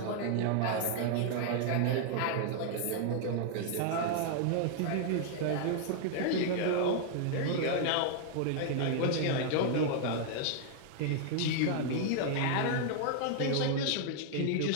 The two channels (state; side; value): different; both; correlation 0.00